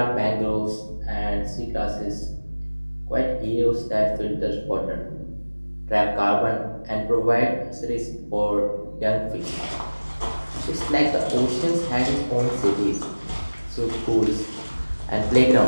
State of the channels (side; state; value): both; inverted; correlation -1.00